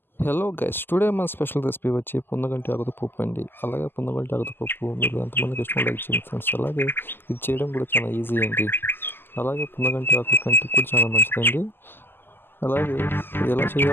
Hello guys, today మన special recipe వచ్చి పొందగంటి ఆకుతో పప్పు అండి. అలాగే పొందగంటి ఆకుతో పప్పు మీరు ఎంతమందికి ఇష్టం లైక్ చేయండి ఫ్రెండ్స్. అలాగే ఇది చేయడం కూడా చాలా ఈజీ అండి. అలాగే పొందగంటి ఆకు కంటికి కూడా చాలా మంచిదండి. అలాగే ఇది ఎలా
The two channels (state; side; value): late; right; 0.10 ms